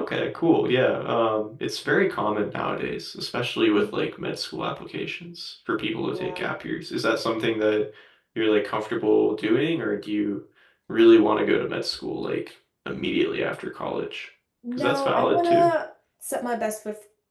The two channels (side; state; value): both; identical; correlation 1.00